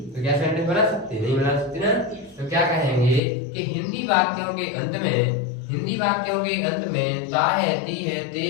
तो क्या सेंटेंस बना सकते? नहीं बना सकते ना। तो क्या कहेंगे कि हिंदी वाक्यों के अंत में ता है, ती है, ते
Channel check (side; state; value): right; drops out; at 3.2 s